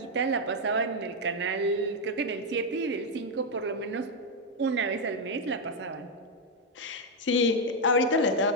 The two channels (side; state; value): both; normal; correlation 0.01